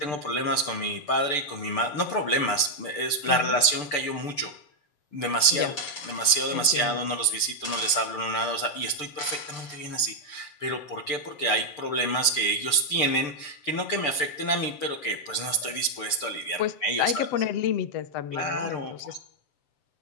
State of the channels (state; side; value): late; right; 6.8 ms